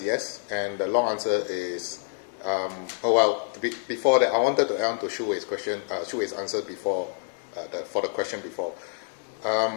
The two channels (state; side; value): silent; right; 60 dB below the other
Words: yes, and the long answer is, before that, I wanted to add on to Shuwei's question, Shuwei's answer before, for the question before.